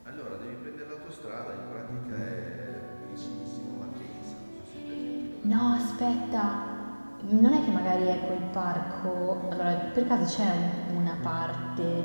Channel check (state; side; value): inverted; both; correlation -1.00